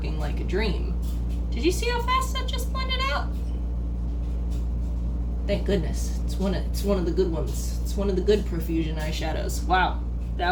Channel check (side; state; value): both; identical; correlation 1.00